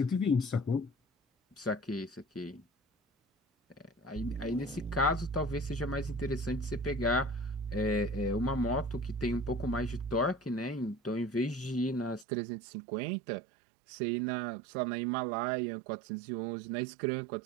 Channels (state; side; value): drops out; left; at 12.2 s